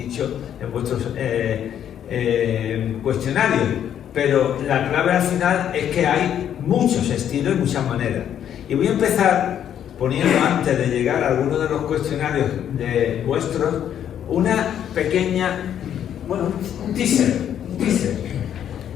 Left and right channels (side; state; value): right; quieter; 9.8 dB